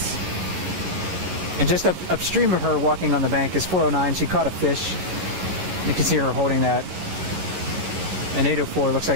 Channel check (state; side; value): late; left; 11 ms